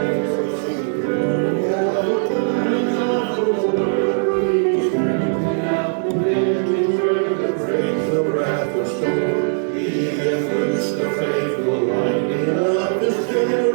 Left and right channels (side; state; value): left; silent; digital silence